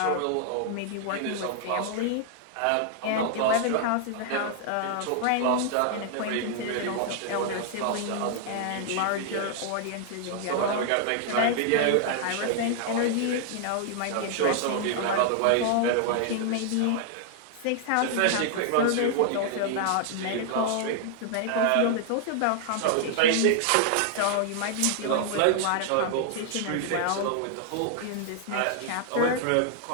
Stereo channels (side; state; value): both; different; correlation -0.01